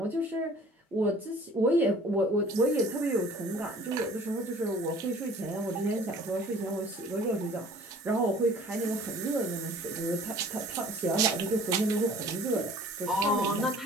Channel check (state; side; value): normal; both; correlation 0.50